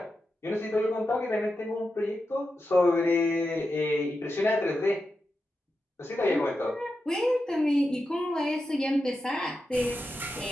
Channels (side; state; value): both; normal; correlation 0.89